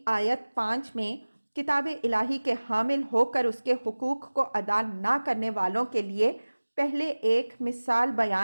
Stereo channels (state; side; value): inverted; both; correlation -1.00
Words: آیت 5 میں کتاب الہی کے حامل ہو کر اس کے حقوق کو ادا نہ کرنے والوں کے لیے پہلے ایک مثال